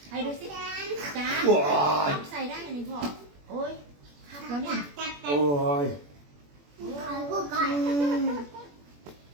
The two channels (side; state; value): left; late; 21 ms